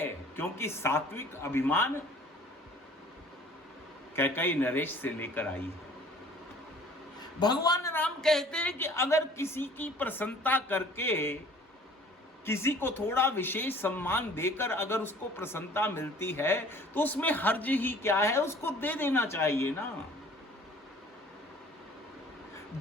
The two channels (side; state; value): both; normal; correlation 0.51